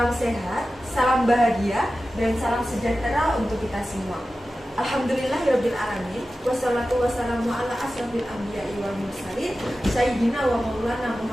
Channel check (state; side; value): normal; both; correlation 0.94